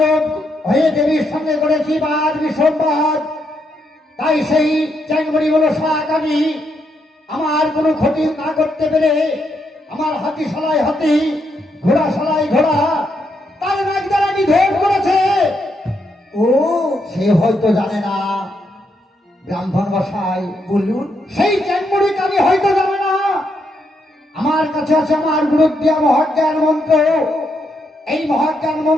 হয়ে দেবীর সঙ্গে করেছি বাদ বিসম্বাদ, তাই সেই চ্যাংমড়ি হলো সাকানি আমার কোনো ক্ষতি না করতে পেরে আমার হাতি সালাই হাতি, ঘোড়া সালাই ঘোড়া, তার নাক দ্বারা নিধন করেছে। ও, সে হয়তো জানে না ব্রাহ্মণ মশাই, বলুন। সেই চ্যাংমড়ি কানি হয়তো জানে না আমার কাছে আছে আমার গুরুদ্দিয়া মহাজ্ঞান মন্ত্র। এই মহাজ্ঞান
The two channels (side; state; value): both; normal; correlation 0.79